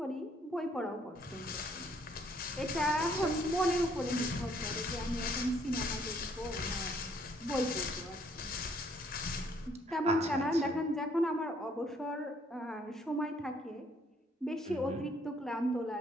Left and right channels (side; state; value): both; normal; correlation 0.66